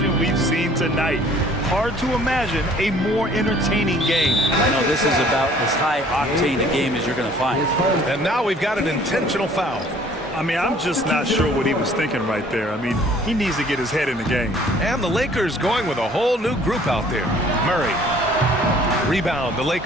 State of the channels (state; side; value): normal; both; correlation 0.55